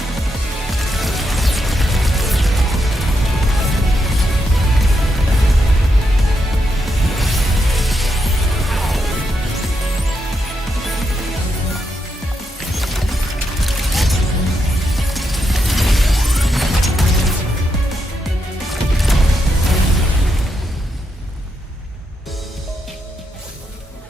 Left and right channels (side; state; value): both; normal; correlation 0.82